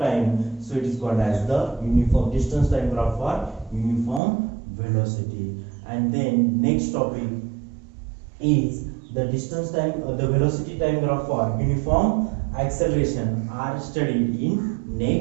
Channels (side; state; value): left; drops out; at 4.2 s